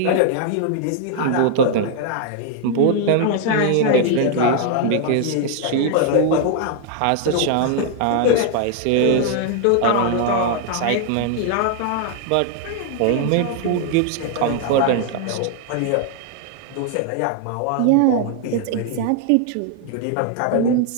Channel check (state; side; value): different; both; correlation 0.00